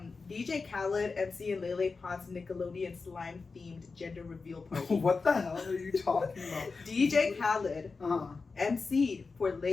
Khaled, MC and Lele Pons Nickelodeon slime themed gender reveal party. What the hell are you talking about? DJ Khaled MC'd for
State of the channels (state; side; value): quieter; right; 4.4 dB